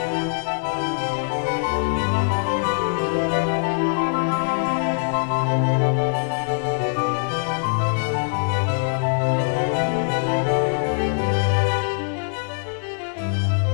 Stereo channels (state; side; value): silent; right; digital silence